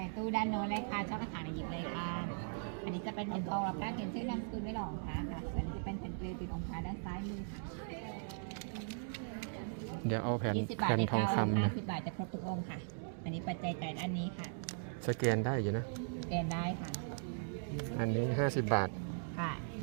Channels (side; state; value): left; silent; digital silence